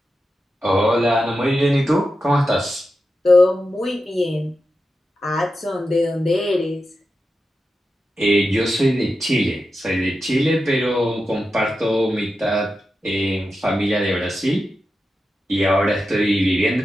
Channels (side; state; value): both; normal; correlation 0.90